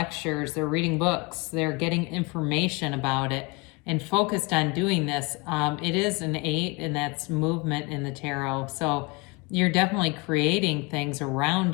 they're reading books, they're getting information about it and focused on doing this. It is an 8, and that's movement in the tarot. So you're definitely creating things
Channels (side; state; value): right; quieter; 27.4 dB